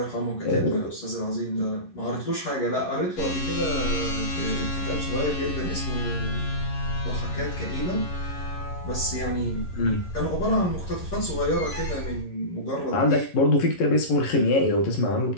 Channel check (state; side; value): late; right; 11 ms